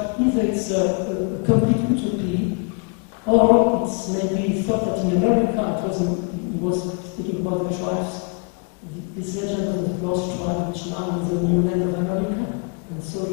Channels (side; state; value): right; quieter; 35.7 dB